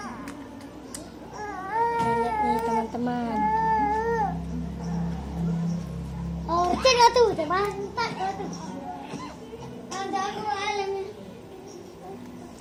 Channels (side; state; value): both; identical; correlation 1.00